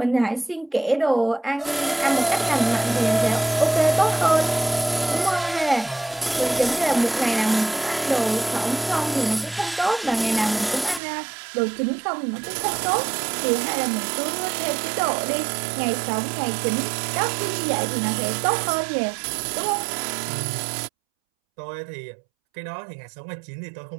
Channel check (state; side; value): drops out; left; at 11.0 s